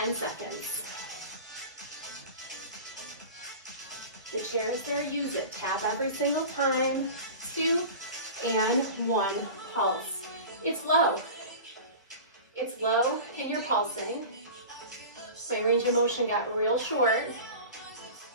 seconds. The chair is there, use it. Tap every single time. 2 and 1. Pulse. It's low. It's low and you're pulsing. My range of motion got real short,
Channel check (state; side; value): inverted; both; correlation -0.35